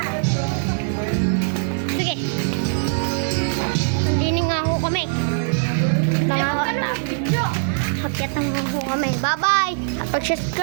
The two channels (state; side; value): silent; left; 57 dB below the other